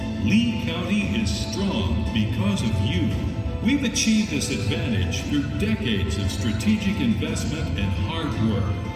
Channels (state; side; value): identical; both; correlation 1.00